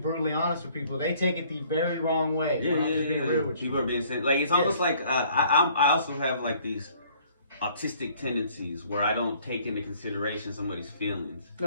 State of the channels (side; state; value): both; inverted; correlation -0.58